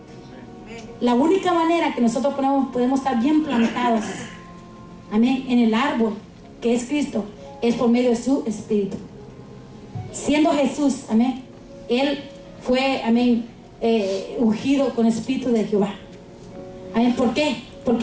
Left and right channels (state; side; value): identical; both; correlation 1.00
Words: La única manera que nosotros podemos estar bien plantados, amén, en el árbol que es Cristo, es por medio de su espíritu. Siendo Jesús, amén, Él fue, amén, ungido con el espíritu de Jehová. Amén. ¿Por qué?